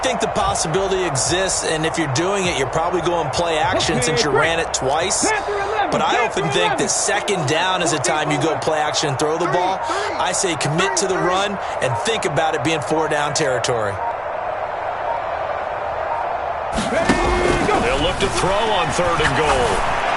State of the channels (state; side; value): identical; both; correlation 1.00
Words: the possibility exists, and if you're doing it, you're probably going play action since you ran it twice. But I often think that second down is a time you go play action and throw the ball. I say commit to the run and think about it being 4-down territory. They'll look to throw on third and goal.